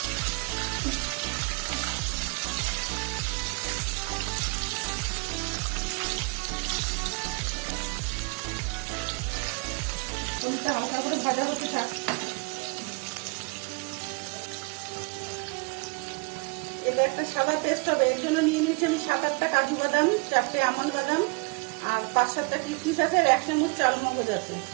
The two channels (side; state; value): left; quieter; 32.0 dB